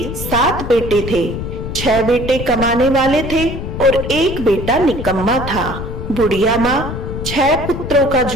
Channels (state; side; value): noise; left; rumble, 7 dB below the sound